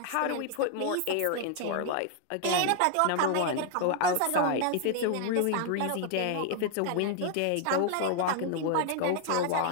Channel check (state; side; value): different; both; correlation 0.00